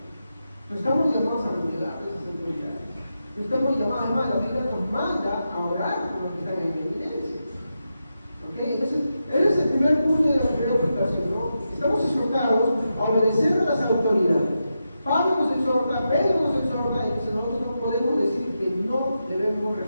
No estamos llamados a renegar de esas autoridades. No estamos llamados, además, la Biblia nos manda a orar por los que están en evidencia. ¿Ok? Entonces, ese es el primer punto de la primera aplicación, ¿no? Estamos exhortados a obedecer a las autoridades. Pablo nos exhorta, Pedro nos exhorta, y nosotros no podemos decir que no debemos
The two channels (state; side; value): inverted; both; correlation -0.88